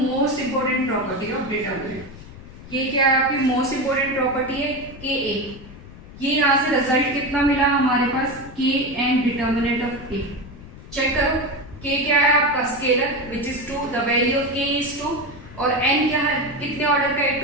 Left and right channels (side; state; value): left; noise; rumble, 16 dB below the sound